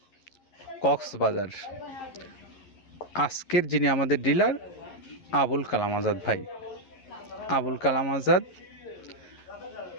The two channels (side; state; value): right; late; 11 ms